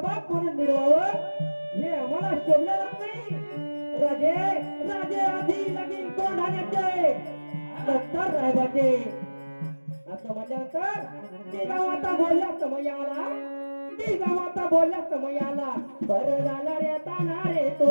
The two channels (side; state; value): both; inverted; correlation -1.00